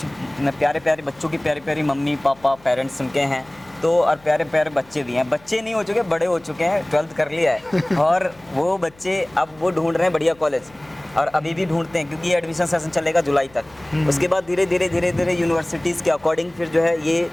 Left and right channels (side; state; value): left; noise; hum, 27 dB below the sound